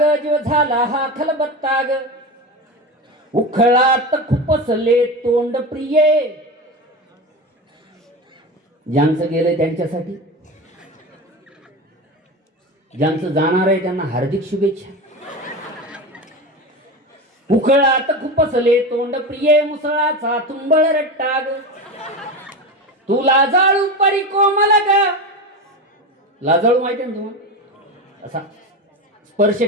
जीव झाला हा खलबत्ता ग. उखळात खुपसले तोंड प्रिये. ज्यांचं गेलंय त्यांच्यासाठी, ज्यांचं जाणार आहे त्यांना हार्दिक शुभेच्छा. उखळात खुपसले तोंड प्रिये, मुसळाचा तुंबळ रट्टाग. तू लाजाळू परी कोमल ग. लाजाळू माहिती ना तुम्हाला, असा स्पर्श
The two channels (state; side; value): normal; both; correlation 0.24